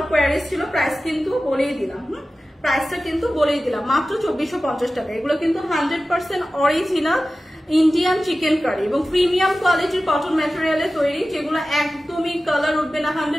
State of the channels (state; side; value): normal; both; correlation 0.95